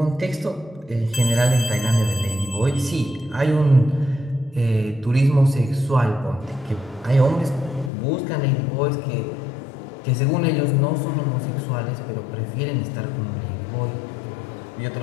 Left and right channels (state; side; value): drops out; right; at 7.9 s